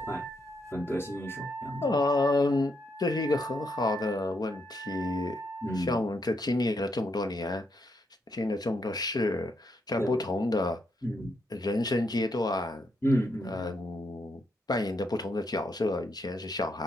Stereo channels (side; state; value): both; normal; correlation 0.79